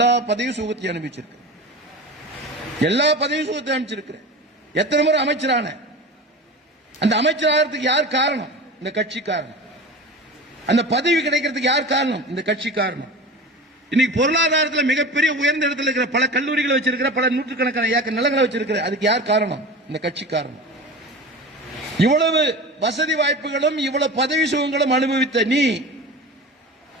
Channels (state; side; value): normal; both; correlation 0.32